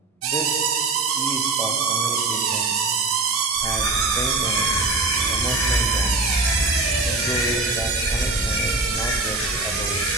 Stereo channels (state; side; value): quieter; left; 3.6 dB